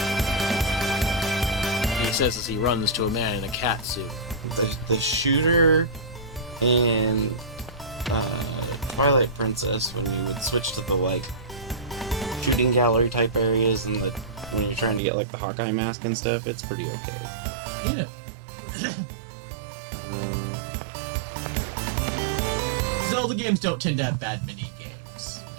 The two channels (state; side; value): drops out; left; at 15.0 s